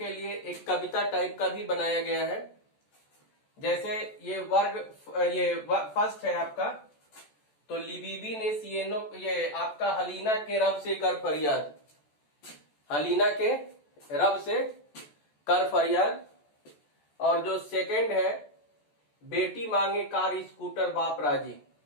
लिए एक कविता टाइप का भी बनाया गया है। जैसे ये वर्ग, ये फर्स्ट है आपका, तो लिबीबी ने सिएनो, ये आपका हलीना के रब से कर फरियाद, हलीना के रब से कर फरियाद। और जो सेकंड है बेटी मांगे कार स्कूटर बाप राजी,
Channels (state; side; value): late; right; 14 ms